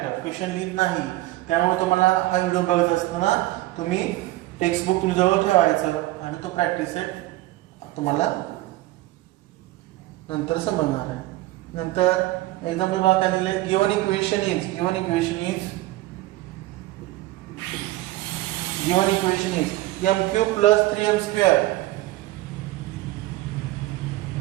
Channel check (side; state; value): left; quieter; 17.5 dB